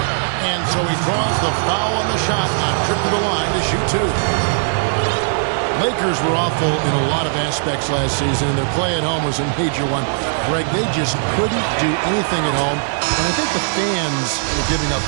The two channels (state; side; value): silent; left; digital silence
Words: And so he draws the foul on the shot on trip to the line to shoot 2. Lakers were awful in a lot of aspects last season. Their play at home was a major one. Greg, they just couldn't do anything at home. And I think the fans were giving up